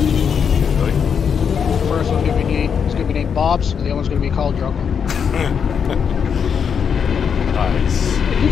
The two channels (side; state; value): right; quieter; 7.0 dB